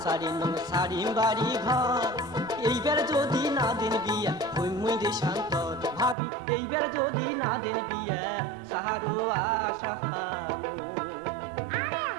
সারি নং সারি বাড়ি ঘর এইবার যদি না দিন বিয়া হই মুই দেশান্তর ভাবি এইবার যদি না দিন বিয়া সাহারু আশা আরে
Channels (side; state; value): left; drops out; at 6.2 s